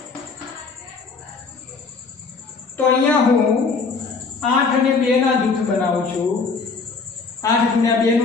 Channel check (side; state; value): right; quieter; 4.6 dB